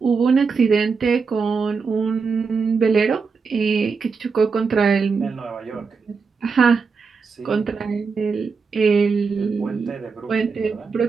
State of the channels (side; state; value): left; quieter; 5.1 dB